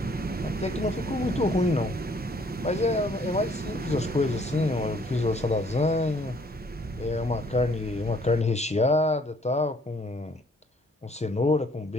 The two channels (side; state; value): both; normal; correlation 0.62